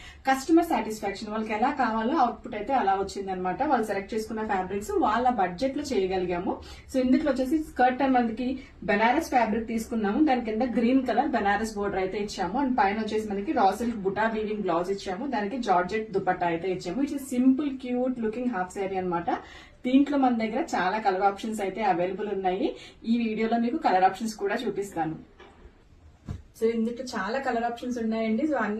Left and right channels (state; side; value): identical; both; correlation 1.00